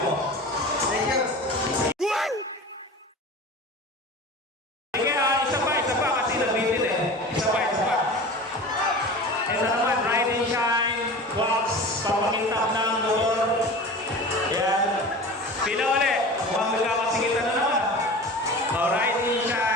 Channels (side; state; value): both; normal; correlation 0.35